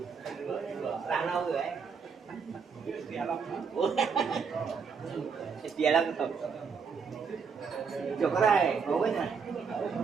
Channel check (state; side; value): quieter; left; 5.8 dB